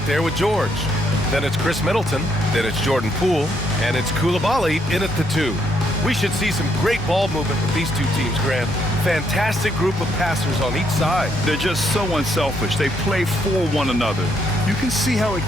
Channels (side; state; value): both; normal; correlation 0.73